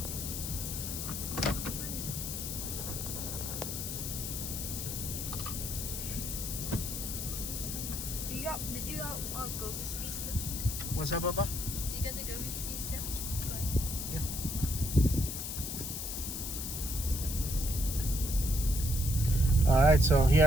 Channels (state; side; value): noise; left; hiss, 5 dB below the sound